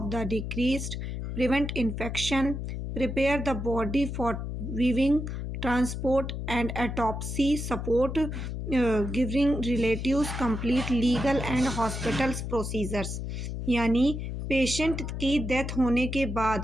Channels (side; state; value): left; noise; hum, 5 dB below the sound